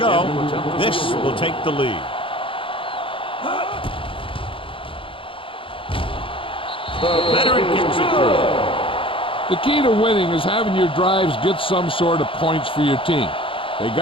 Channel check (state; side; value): late; right; 0.25 ms